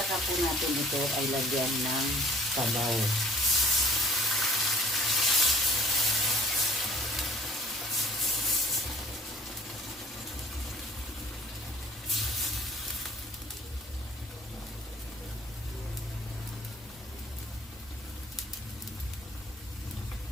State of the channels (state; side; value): normal; both; correlation 0.52